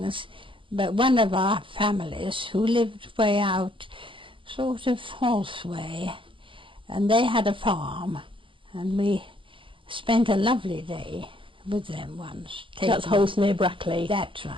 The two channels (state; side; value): late; left; 0.25 ms